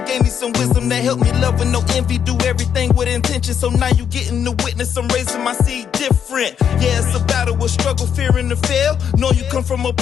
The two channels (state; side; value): quieter; right; 8.1 dB